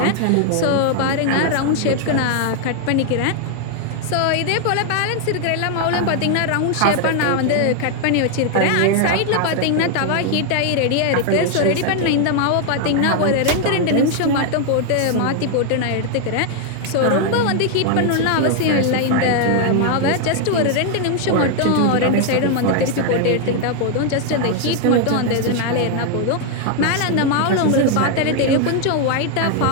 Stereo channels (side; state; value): both; different; correlation 0.00